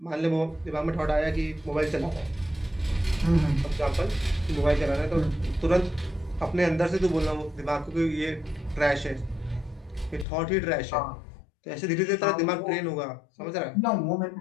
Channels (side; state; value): right; drops out; at 10.2 s